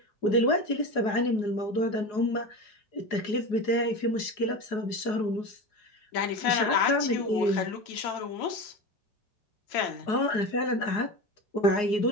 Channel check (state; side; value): late; right; 4.8 ms